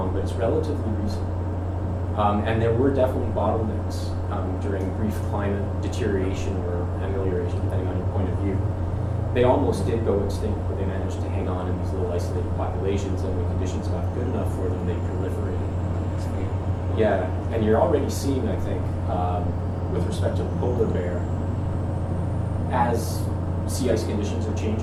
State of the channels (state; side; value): identical; both; correlation 1.00